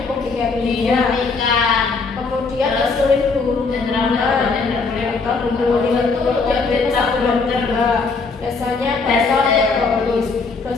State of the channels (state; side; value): quieter; right; 4.4 dB